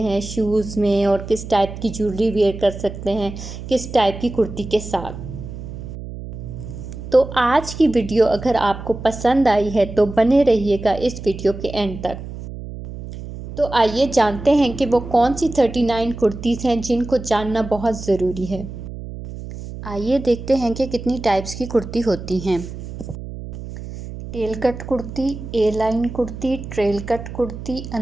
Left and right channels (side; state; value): right; noise; hum, 10 dB below the sound